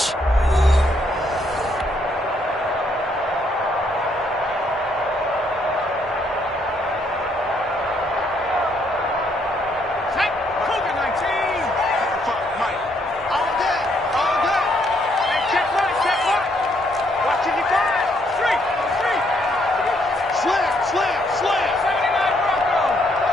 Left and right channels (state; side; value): normal; both; correlation 0.71